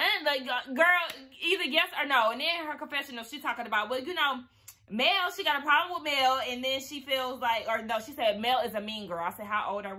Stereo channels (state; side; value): identical; both; correlation 1.00